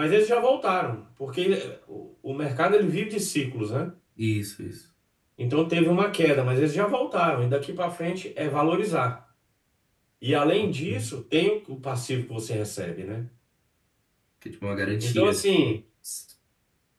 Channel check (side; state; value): both; identical; correlation 1.00